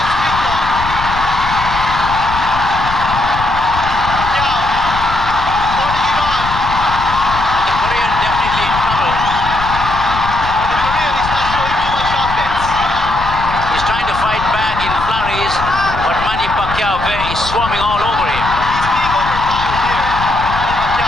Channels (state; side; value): noise; left; rumble, 9 dB below the sound